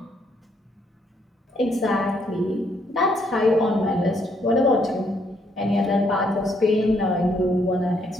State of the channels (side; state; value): both; normal; correlation 0.71